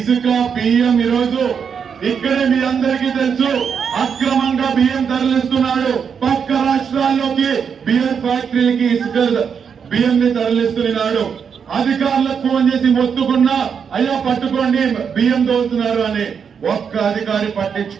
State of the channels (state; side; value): quieter; left; 6.8 dB